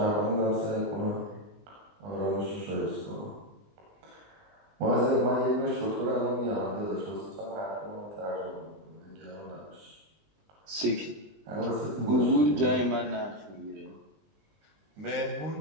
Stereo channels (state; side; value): late; left; 20 ms